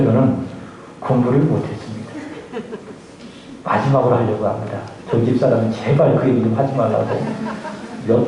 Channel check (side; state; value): both; identical; correlation 1.00